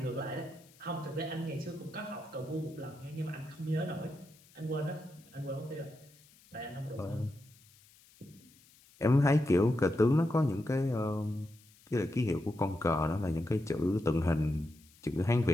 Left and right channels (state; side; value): noise; left; hiss, 27 dB below the sound